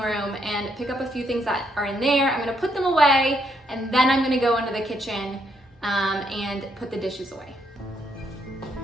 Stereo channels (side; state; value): both; normal; correlation 0.75